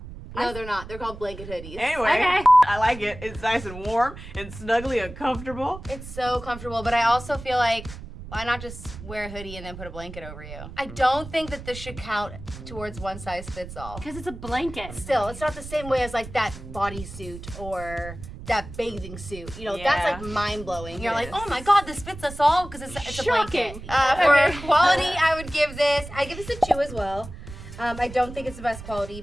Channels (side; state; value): right; noise; rumble, 13 dB below the sound